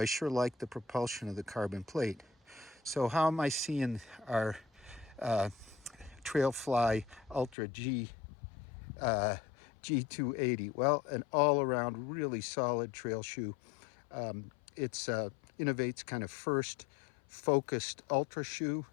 sure like the propulsion of the carbon plate. So how am I seeing our TrailFly Ultra G G280? Well, an all-around really solid trail shoe. It's Inov-8's kind of first focused ultra shoe.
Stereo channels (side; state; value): right; drops out; at 7.6 s